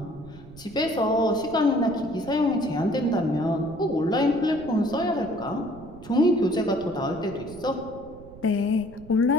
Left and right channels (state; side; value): noise; right; rumble, 19 dB below the sound